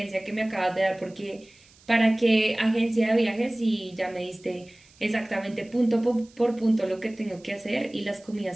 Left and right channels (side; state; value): right; noise; hiss, 28 dB below the sound